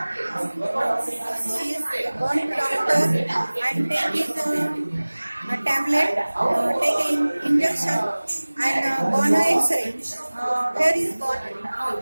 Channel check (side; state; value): both; inverted; correlation -1.00